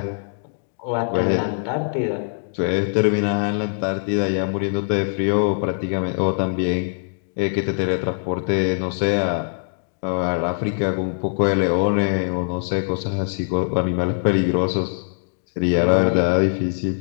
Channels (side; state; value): right; silent; digital silence